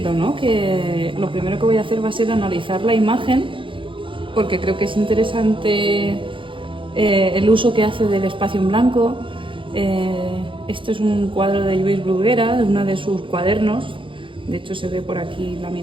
¿no? Que lo primero que voy a hacer va a ser analizar la imagen, porque creo que es interesante el uso que hace del espacio en blanco. Esto es un cuadro de Lluís Bruguera, de uno de sus cuadernos. De hecho se ve por aquí la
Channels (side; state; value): left; late; 0.25 ms